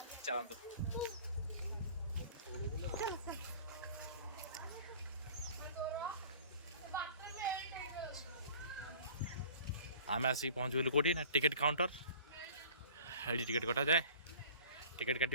चलते आम आसिक पहुँच गलु कौटी ना टिकेट काउंटर। ये टिकेट कटा जाए टिकेट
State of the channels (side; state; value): both; inverted; correlation -0.46